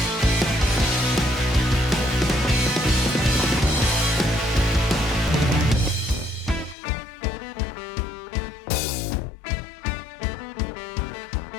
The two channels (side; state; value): right; drops out; at 6.8 s